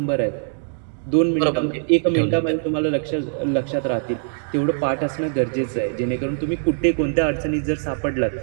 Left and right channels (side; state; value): left; silent; digital silence